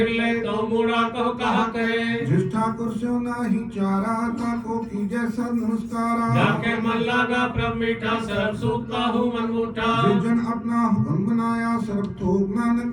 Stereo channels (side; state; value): both; identical; correlation 1.00